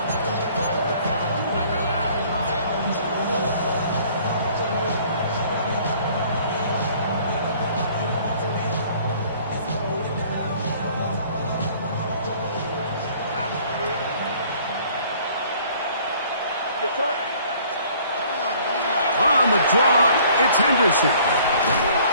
On the draw, it's Henderson.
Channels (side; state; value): both; inverted; correlation -0.55